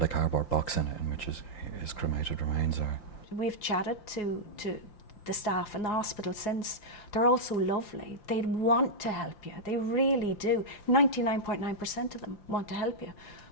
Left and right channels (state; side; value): late; right; 5.8 ms